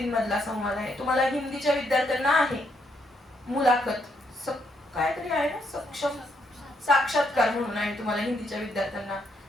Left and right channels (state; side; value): normal; both; correlation 0.75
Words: संवाद आहे. तुम्हाला हिंदीच्या विद्यार्थ्यांना आहे मुलाखत, काहीतरी आहे ना, सक्षम साक्षात्कार म्हणून आहे तुम्हाला हिंदीच्या विद्यार्थ्यांना.